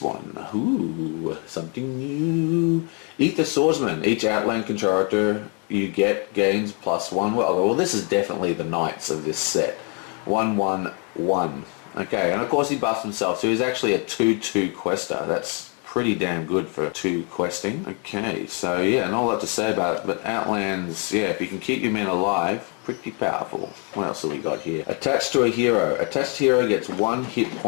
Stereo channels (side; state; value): right; quieter; 36.8 dB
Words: one? Ooh, something new. Eat the Swordsman. Each Outland character you get gains +1. Well, this is definitely the Knights of this set. 1/1/1. Okay, and of course he buffs himself, so he's actually a 2/2 quester. That's pretty damn good for 2 questing. Okay, so yeah, not a lot to say about it, but Outlands, yeah, if you can keep your men alive, pretty powerful. What else have we got here? Attached to a hero. Attached hero gets 1 hit